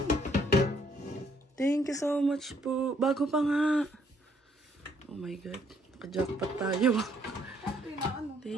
Thank you so much po. Bago pa nga. Oh my God. Naka-jackpot tayo.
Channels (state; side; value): normal; both; correlation 0.67